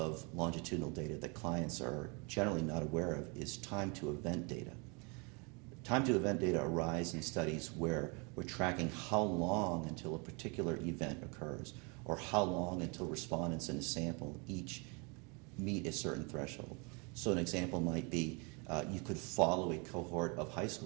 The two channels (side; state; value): left; quieter; 32.1 dB